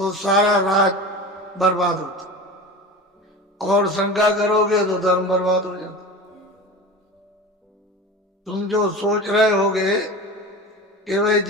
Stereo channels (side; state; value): both; normal; correlation 0.31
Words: सारा राज बर्बाद होता, और शंका करोगे तो धर्म बर्बाद हो जाता। तुम जो सोच रहे होगे कि भाई